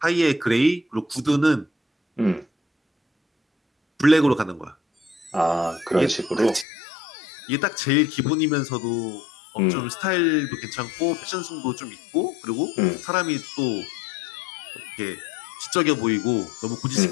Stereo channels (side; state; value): right; drops out; at 6.7 s